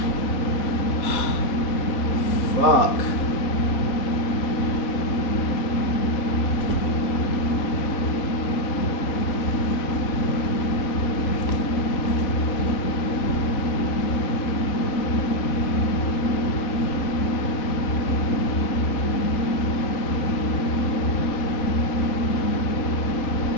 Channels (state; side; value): late; right; 4.0 ms